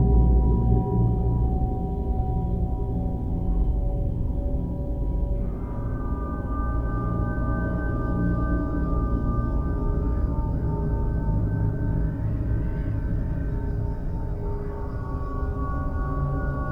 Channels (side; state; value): both; identical; correlation 1.00